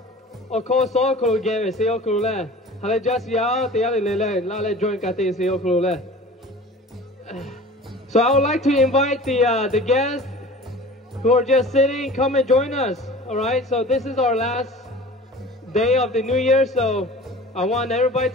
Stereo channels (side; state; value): both; normal; correlation 0.41